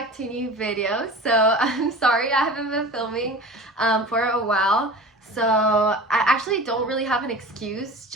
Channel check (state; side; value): normal; both; correlation 0.36